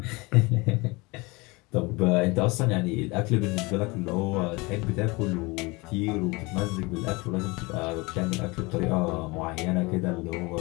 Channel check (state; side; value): quieter; right; 25.0 dB